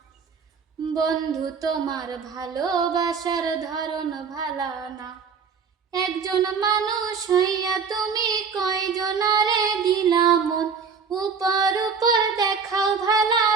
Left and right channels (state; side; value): quieter; left; 5.7 dB